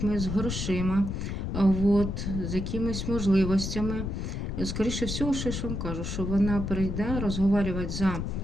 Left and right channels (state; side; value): noise; left; rumble, 3 dB below the sound